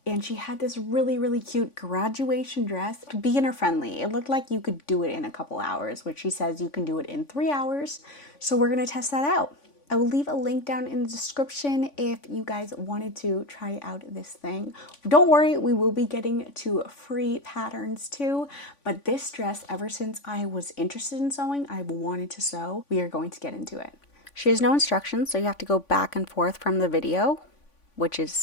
and she had this really cute graduation dress, beginner friendly. It looked like you could do it in a couple hours, which she says you can do it in 3 hours. So we're gonna test that out. I will leave a link down in the description if you guys wanted to try out this thing. Don't worry, we will be getting to free patterns too, but this dress, ever since I was interested in sewing, I've wanted to sew. We are going to get into it. She has no instructions, so you have to go back and forth from the video, which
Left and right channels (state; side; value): late; right; 3.5 ms